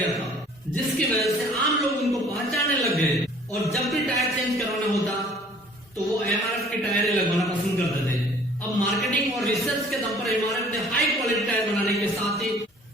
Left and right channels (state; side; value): normal; both; correlation 0.53